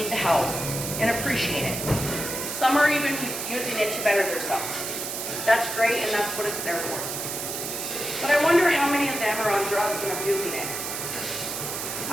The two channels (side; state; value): right; noise; hiss, 5 dB below the sound